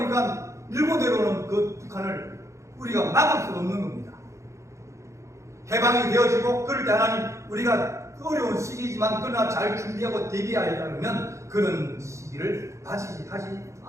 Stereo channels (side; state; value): left; late; 0.14 ms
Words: 밀고 내려오는 그 북한을 우리가 막을 수 없는 겁니다. 해방이 되어지고 그럴 때 하나님, 우리가 어려운 시기지만 그러나 잘 준비하고 대비하여 가면 그런 시기를 맞이하지